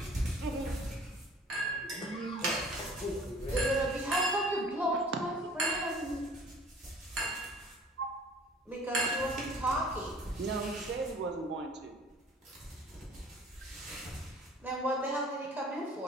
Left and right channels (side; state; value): both; normal; correlation 0.50